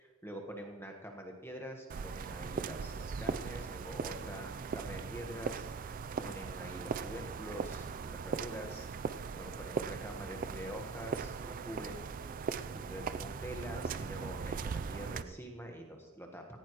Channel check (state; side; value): quieter; left; 4.0 dB